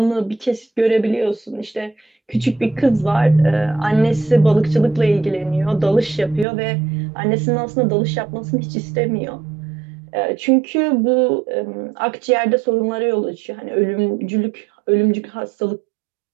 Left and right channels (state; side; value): drops out; left; at 6.5 s